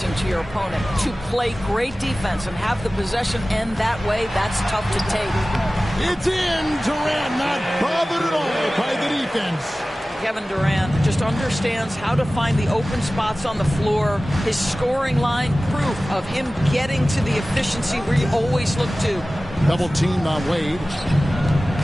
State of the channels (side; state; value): both; normal; correlation 0.97